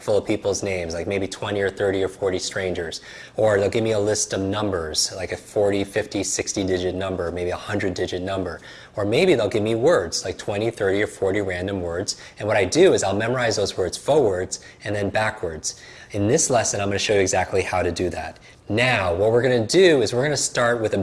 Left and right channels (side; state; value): both; identical; correlation 1.00